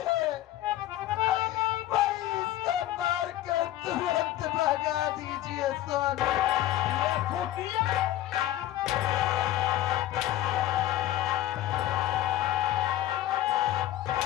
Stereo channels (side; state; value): right; quieter; 14.0 dB